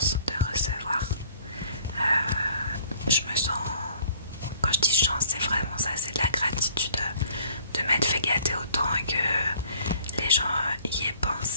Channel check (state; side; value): inverted; both; correlation -0.56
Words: de recevoir. Je me sens, quand je dis chance, c'est vraiment ça, c'est de la gratitude de m'être fait gâter autant et que les gens y aient